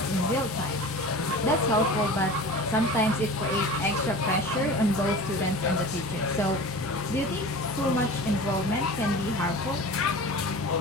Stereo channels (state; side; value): normal; both; correlation 0.36